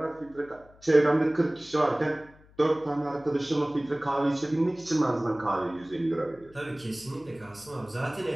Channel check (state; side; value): noise; left; hum, 26 dB below the sound